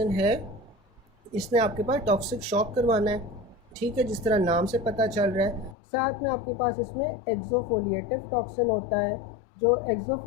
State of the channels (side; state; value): right; drops out; at 5.8 s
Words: है, इसने आपके पास टॉक्सिक शॉक करवाना है, ठीक है, जिस तरह नाम से पता चल रहा है। साथ में आपके पास इसमें एक्सोफोलिएटिव टॉक्सिन होता है। जो